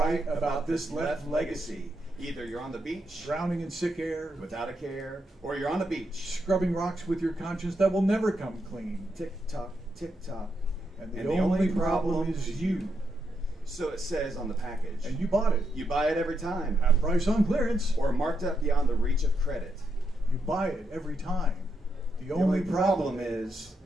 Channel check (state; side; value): normal; both; correlation 0.81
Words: about this left legacy. Either you're on the beach, drowning in sick air, without a care, or you're on the beach, scrubbing rocks with your conscience that will never come clean. Tick tock, tick tock. And the only problem is you. So it says on the package. And you bought it. You buy it every time. Half price on clearance. Or marked up beyond the reach of credit. You buy it every time. The only problem is